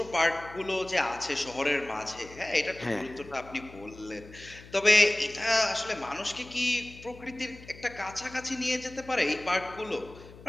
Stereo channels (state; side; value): noise; left; hum, 19 dB below the sound